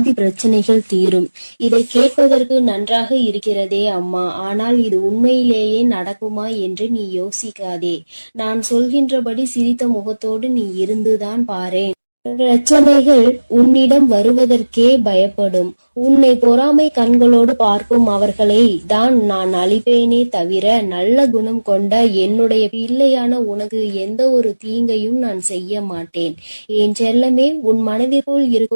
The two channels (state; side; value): inverted; both; correlation -1.00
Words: பிரச்சனைகள் தீரும். இதை கேட்பதற்கு நன்றாக இருக்கிறதே அம்மா, ஆனால் இது உண்மையிலேயே நடக்குமா என்று நீ யோசிக்காதே. நான் சொல்கின்றபடி சிரித்த முகத்தோடு நீ இருந்துதான் பாரேன். பிரச்சனைகள் உன்னிடம் வருவதற்கே பயப்படும். உன்னை பொறாமை கண்களோடு பார்க்கும் அவர்களை தான் நான் அழிப்பேனே தவிர நல்ல குணம் கொண்ட என்னுடைய பிள்ளையான உனக்கு எந்த ஒரு தீங்கையும் நான் செய்ய மாட்டேன். என் செல்லமே, உன் மனதிற்குள்